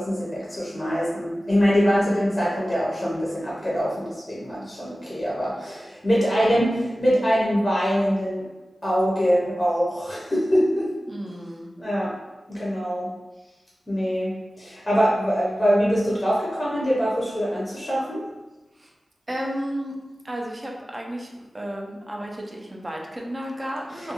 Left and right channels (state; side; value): normal; both; correlation 0.96